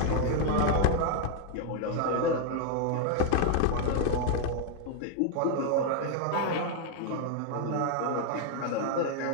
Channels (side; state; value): both; different; correlation 0.00